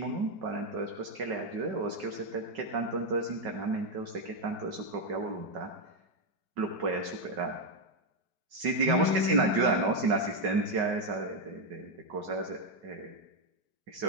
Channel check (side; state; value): left; late; 5.3 ms